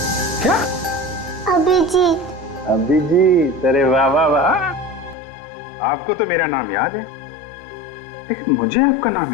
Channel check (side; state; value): right; drops out; at 5.2 s